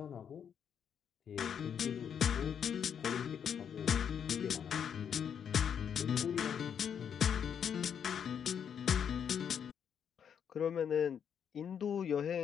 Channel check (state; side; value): quieter; right; 8.0 dB